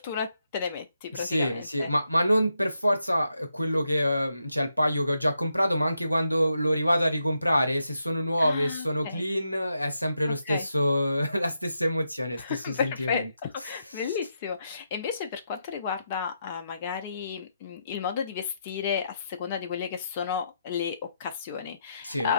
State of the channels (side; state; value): both; inverted; correlation -0.83